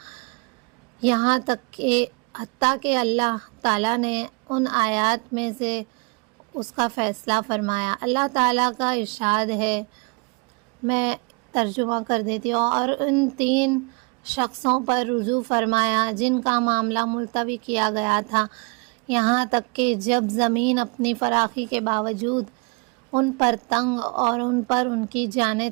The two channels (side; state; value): left; quieter; 32.0 dB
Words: یہاں تک کہ حتیٰ کہ اللہ تعالیٰ نے ان آیات میں سے اس کا فیصلہ فرمایا۔ اللہ تعالیٰ کا ارشاد ہے، میں ترجمہ کر دیتی ہوں، اور ان 3 شخصوں پر رجوع فرمایا جن کا معاملہ ملتوی کیا گیا تھا، یہاں تک کہ جب زمین اپنی فراخی کے باوجود ان پر تنگ اور ان پر ان کی جانیں